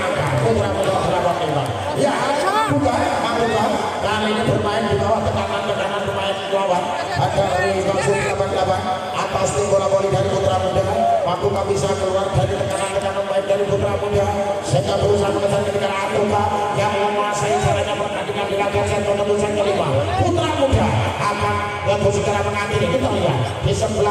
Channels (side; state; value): both; identical; correlation 1.00